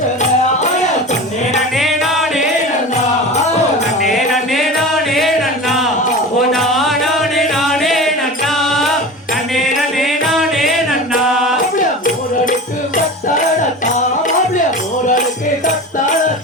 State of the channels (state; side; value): normal; both; correlation 0.31